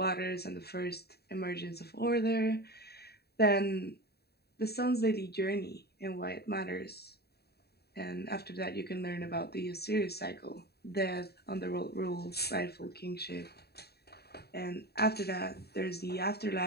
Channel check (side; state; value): right; late; 0.47 ms